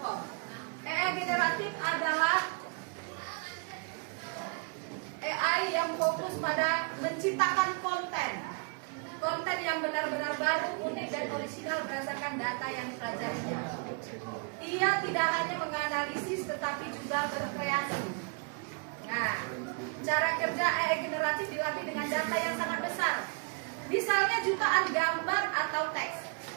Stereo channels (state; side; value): quieter; left; 34.0 dB